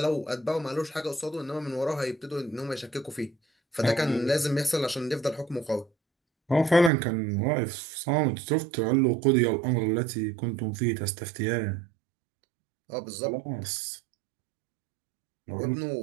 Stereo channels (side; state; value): left; drops out; at 6.9 s